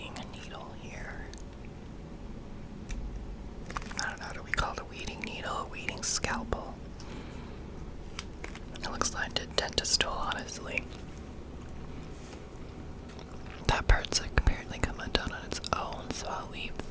needle here. I don't know, do we call it a weeding needle, a weeding scalpel? It looks like a dentist tool, honestly. That part's apparently come undone on its own, so I'll leave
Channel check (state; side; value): identical; both; correlation 1.00